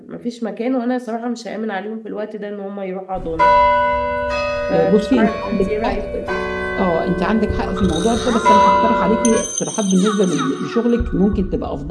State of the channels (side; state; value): both; identical; correlation 1.00